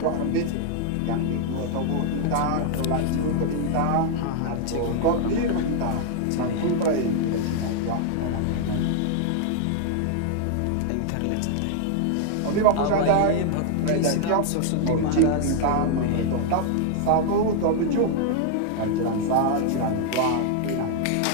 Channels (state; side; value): different; both; correlation 0.00